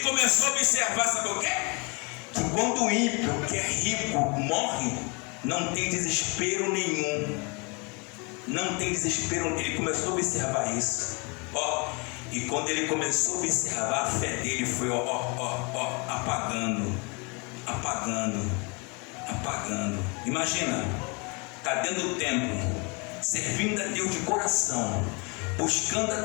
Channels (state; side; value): quieter; right; 31.0 dB